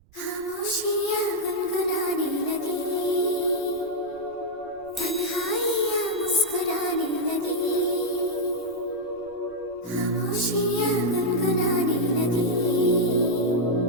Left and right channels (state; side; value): noise; right; rumble, 29 dB below the sound